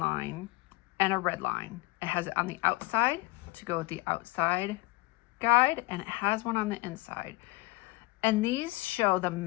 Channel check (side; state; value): right; quieter; 23.3 dB